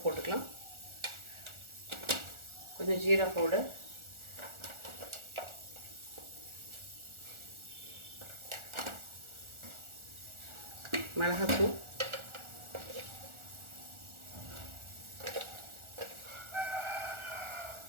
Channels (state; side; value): late; left; 1.4 ms